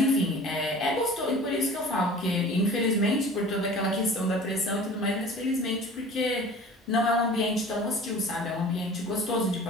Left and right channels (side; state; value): both; normal; correlation 0.43